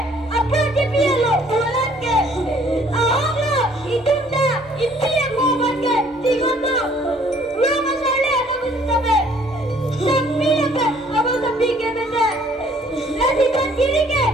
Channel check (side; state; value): both; normal; correlation 0.59